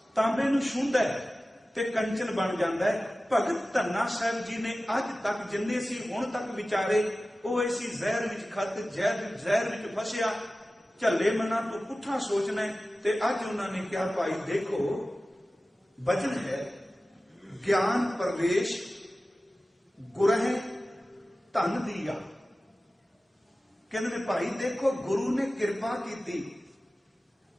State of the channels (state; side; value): normal; both; correlation 0.96